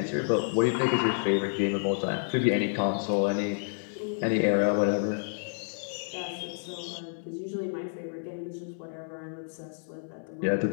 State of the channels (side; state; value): right; silent; 58 dB below the other